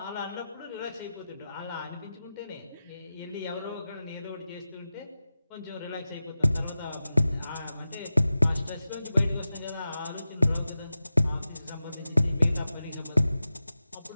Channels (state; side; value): inverted; both; correlation -0.94